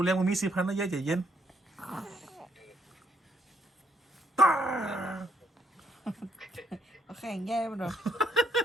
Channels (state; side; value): normal; both; correlation 0.72